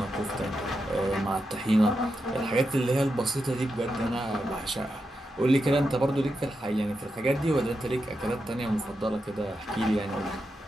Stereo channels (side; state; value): both; normal; correlation 0.87